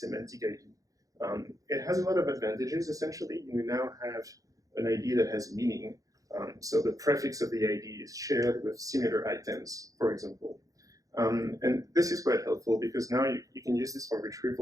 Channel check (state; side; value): late; left; 0.17 ms